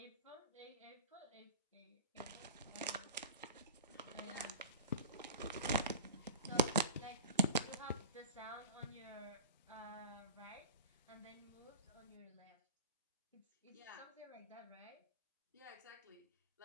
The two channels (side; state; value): both; inverted; correlation -0.33